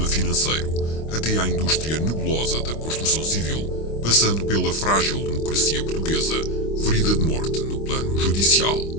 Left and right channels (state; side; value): late; right; 25 ms